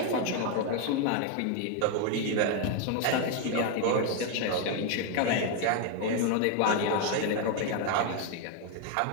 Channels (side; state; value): both; different; correlation 0.01